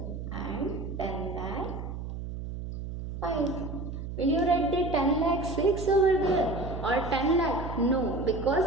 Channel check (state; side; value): noise; right; hum, 7 dB below the sound